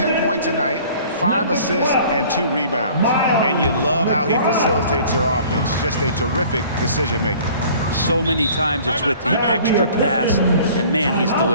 points a night, 5 assists, and 2 rebounds. And you love how he facilitates their offense. Just a terrific decision maker. So many times it's with the extra pass, and man, he's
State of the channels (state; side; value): inverted; both; correlation -0.50